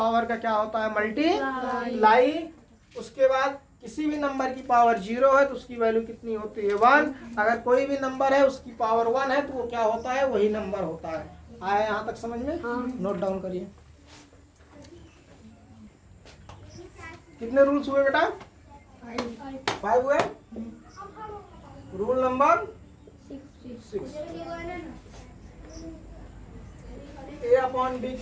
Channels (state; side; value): identical; both; correlation 1.00